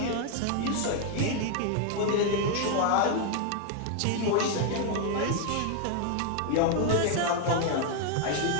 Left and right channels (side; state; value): both; different; correlation 0.01